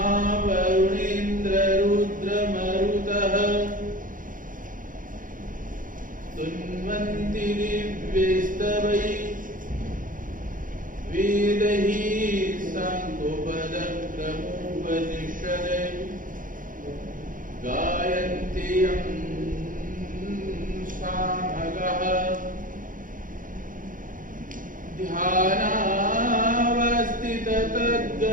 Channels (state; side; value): late; left; 0.39 ms